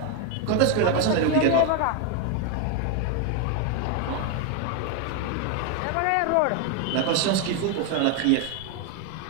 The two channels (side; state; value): both; different; correlation 0.01